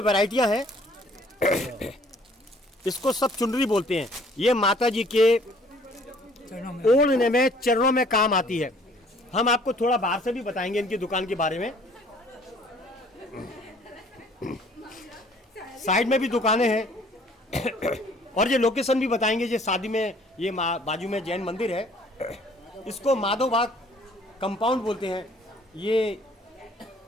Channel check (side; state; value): both; normal; correlation 0.57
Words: वैरायटियां हैं, इसको सब चुनरी बोलते हैं। ये माता जी के ओढ़ने में, चरणों में काम आती है। हम आपको थोड़ा बाहर से भी बताएंगे इनकी दुकान के बारे में। साइड में भी दुकानें हैं और ये लोकेशन भी बताएंगे। ये शादी में, ये बाजू में जैन मंदिर है, इसको माधोबाग कंपाउंड बोलते हैं। ये